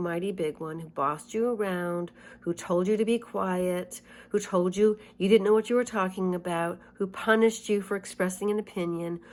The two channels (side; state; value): both; identical; correlation 1.00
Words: big one, who bossed you around, who told you to be quiet, who told you you didn't know what you were talking about, who punished you for expressing an opinion,